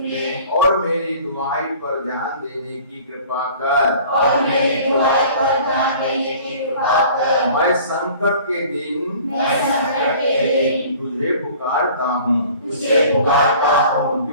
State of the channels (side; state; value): both; inverted; correlation -0.48